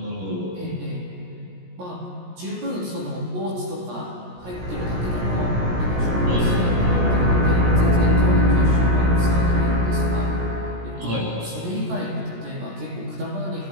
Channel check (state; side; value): late; left; 17 ms